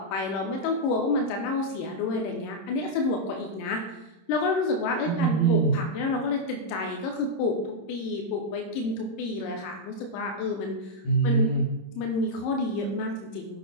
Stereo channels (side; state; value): right; late; 26 ms